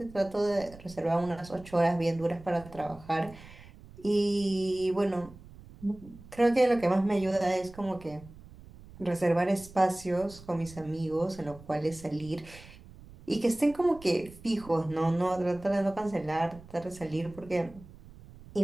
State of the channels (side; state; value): right; noise; rumble, 19 dB below the sound